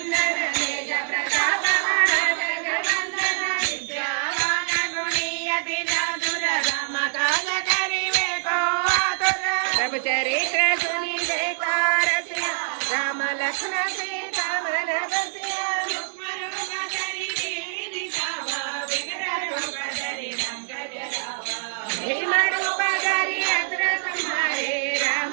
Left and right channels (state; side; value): silent; left; digital silence